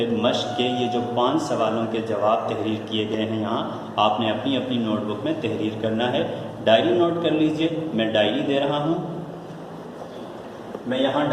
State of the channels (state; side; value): identical; both; correlation 1.00